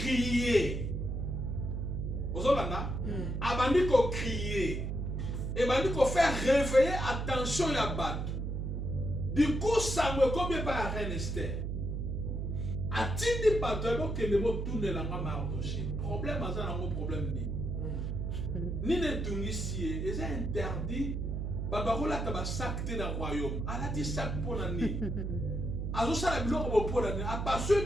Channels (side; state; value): right; noise; hum, 2 dB below the sound